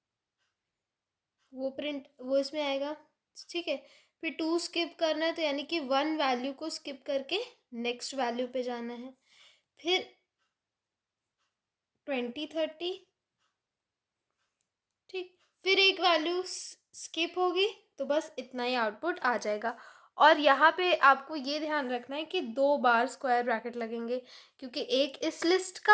वो इसमें आएगा, ठीक है। फिर 2 स्किप करना है, तो यानी कि 1 वैल्यू को स्किप करके नेक्स्ट वैल्यू पे जाना है। फिर 20 30, ठीक। फिर एक वैल्यू स्किप होगी, तो बस इतना ही आउटपुट आ जाएगा। और यहाँ पे आपको ये ध्यान रखना है कि 2 बार स्क्वायर ब्रैकेट लगेंगे, क्योंकि एक इस लिस्ट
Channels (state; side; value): identical; both; correlation 1.00